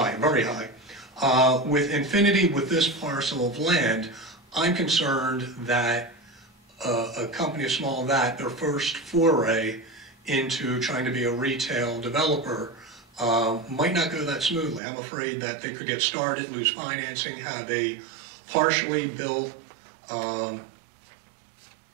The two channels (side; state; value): left; drops out; at 14.8 s